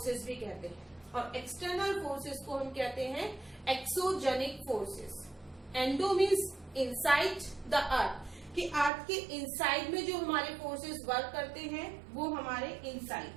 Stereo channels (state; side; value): drops out; left; at 8.9 s